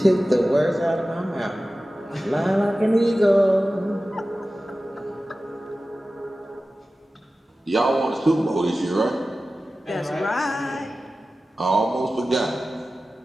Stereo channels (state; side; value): normal; both; correlation 0.95